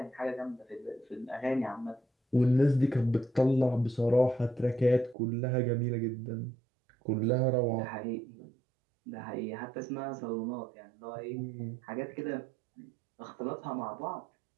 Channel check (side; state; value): left; drops out; at 5.2 s